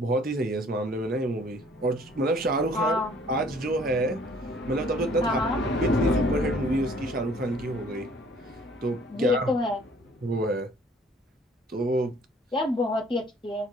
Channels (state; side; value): normal; both; correlation 0.57